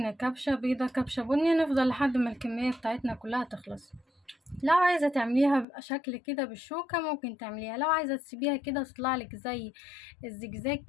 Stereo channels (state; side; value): drops out; right; at 5.7 s